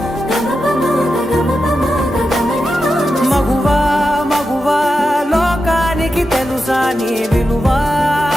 మగువా మగువా లోకానికి తెలుసా నీ విలువా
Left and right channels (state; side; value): normal; both; correlation 0.89